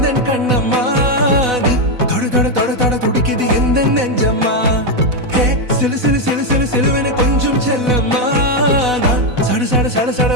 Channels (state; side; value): late; left; 4.0 ms